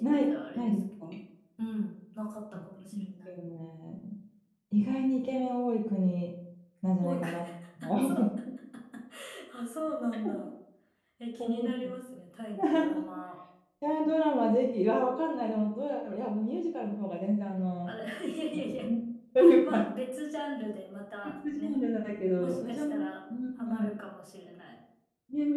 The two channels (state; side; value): identical; both; correlation 1.00